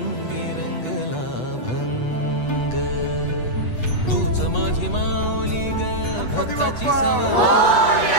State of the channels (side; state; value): right; late; 8.1 ms